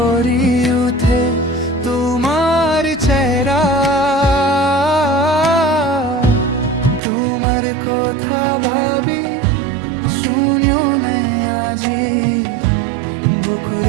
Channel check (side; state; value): left; drops out; at 7.0 s